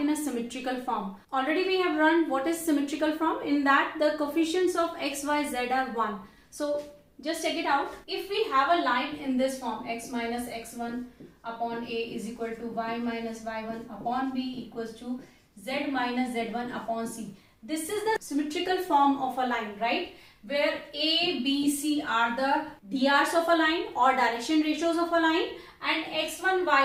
a symmetrical form. Already we have run what is symmetrical form. In that the coefficients of x, y, z are 1. So just check it out. If we have a line in this form, x minus x1 upon a is equal to y minus y1 upon b equals to z minus z1 upon c. This is the symmetrical form of a line, right? Where A, B, C are the DRs of a line or direction ratios of a line, and x1,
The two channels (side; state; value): both; identical; correlation 1.00